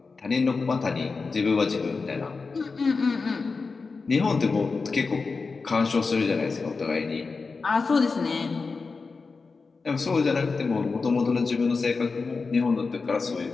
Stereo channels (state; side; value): quieter; right; 4.4 dB